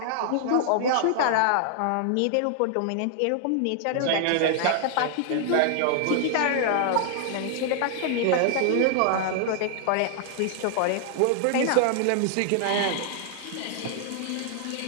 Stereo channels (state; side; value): different; both; correlation 0.00